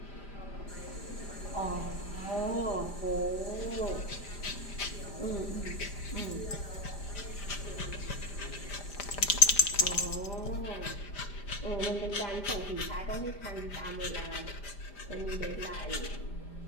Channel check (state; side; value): late; right; 5.0 ms